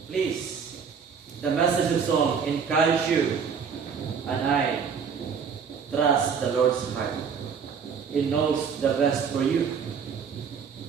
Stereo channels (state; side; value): quieter; left; 6.5 dB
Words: please, the message of song encourages you and I trust the Lord's heart. He knows the best for you.